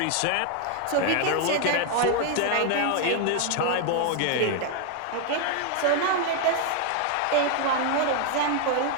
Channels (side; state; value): both; different; correlation 0.00